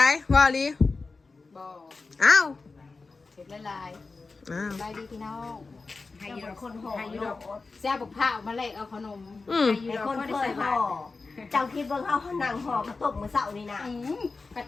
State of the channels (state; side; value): quieter; right; 4.0 dB